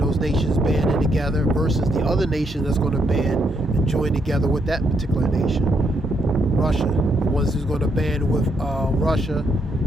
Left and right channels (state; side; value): normal; both; correlation 0.76